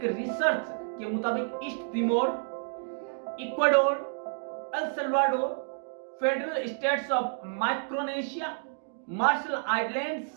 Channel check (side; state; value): left; silent; digital silence